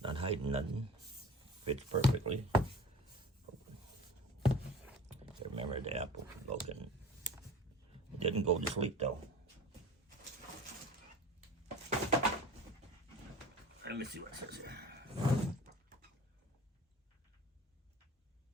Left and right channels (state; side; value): normal; both; correlation 0.39